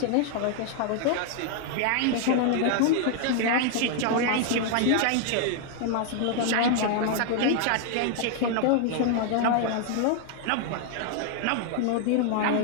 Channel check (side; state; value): both; different; correlation 0.00